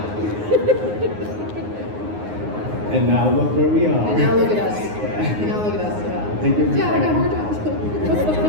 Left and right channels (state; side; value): late; left; 9.6 ms